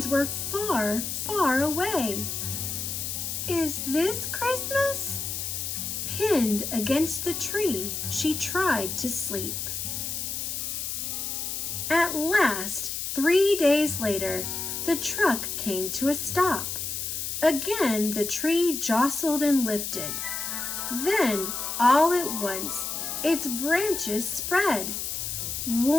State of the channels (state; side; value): noise; left; hiss, 3 dB below the sound